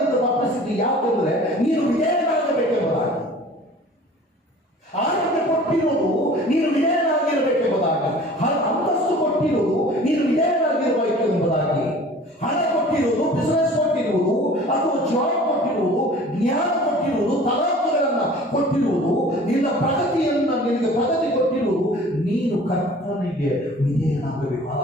ತಪ್ಪಿಸಿದ್ದು ಯಾಕೆಂದ್ರೆ ನೀನು ವಿಧೇಯನಾಗಬೇಕೆಂಬುದಾಗಿ. ಆರೋಗ್ಯ ಕೊಟ್ಟಿರುವುದು ನೀನು ವಿಧೇಯನಾಗಿರಬೇಕೆಂಬುದಾಗಿ, ಅಂತಸ್ತು ಕೊಟ್ಟಿರುವುದು ನೀನು ವಿಧೇಯನಾಗಿರಬೇಕೆಂಬುದಾಗಿ, ಹಣ ಕೊಟ್ಟಿರುವುದು, ಬಿಸಿನೆಸ್ ಕೊಟ್ಟಿರುವುದು, ಅಥವಾ ಜಾಬ್ ಕೊಟ್ಟಿರುವುದು, ಜ್ಞಾನ ಕೊಟ್ಟಿರುವುದು, ತಲಾಂತುಗಳನ್ನು ಕೊಟ್ಟಿರುವುದು, ನಿನ್ನ ಪ್ರಗತಿಯನ್ನು ನಿನಗೆ ಪ್ರಗತಿ ಕೊಟ್ಟಿರುವುದು, ನೀನು ಕರ್ತನಿಗೆ ವಿಧೇಯನಾಗಬೇಕು.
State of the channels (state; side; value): normal; both; correlation 0.46